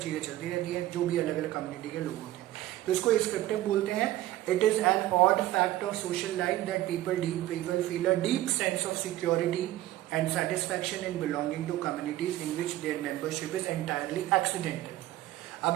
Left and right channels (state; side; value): quieter; left; 15.0 dB